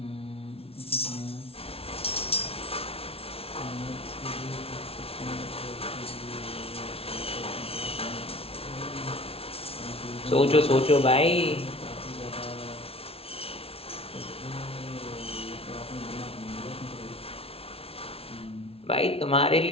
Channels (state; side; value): late; right; 0.28 ms